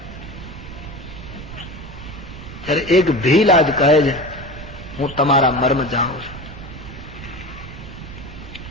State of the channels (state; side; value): noise; right; rumble, 12 dB below the sound